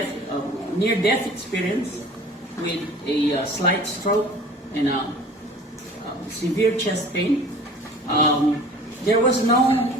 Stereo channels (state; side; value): normal; both; correlation 0.45